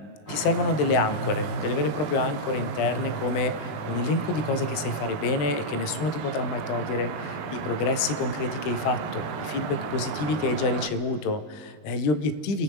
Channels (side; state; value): right; late; 20 ms